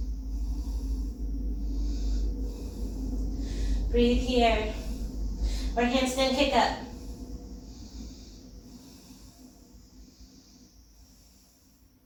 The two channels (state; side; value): identical; both; correlation 1.00